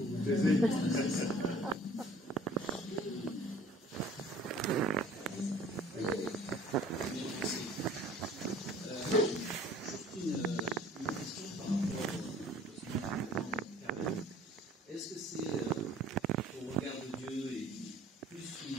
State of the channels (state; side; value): normal; both; correlation 0.51